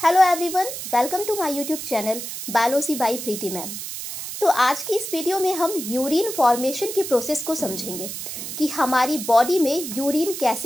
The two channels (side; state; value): right; noise; hiss, 7 dB below the sound